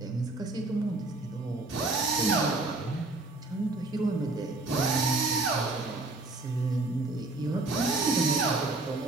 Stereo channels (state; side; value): quieter; left; 3.1 dB